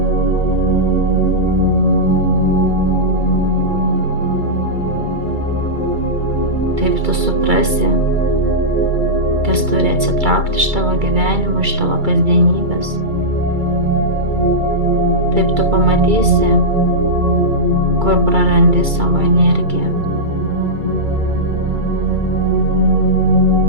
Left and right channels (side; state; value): left; late; 2.3 ms